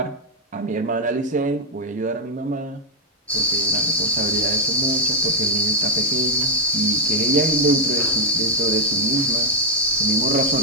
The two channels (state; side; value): normal; both; correlation -0.01